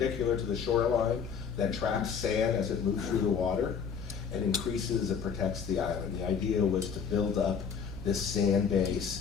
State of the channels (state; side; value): quieter; right; 6.6 dB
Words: to the shoreline that traps sand as it moves through the water and increases and protects the island. The idea was to build up this sand